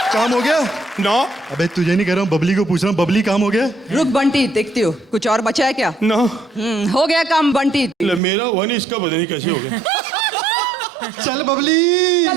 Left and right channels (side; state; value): left; drops out; at 8.2 s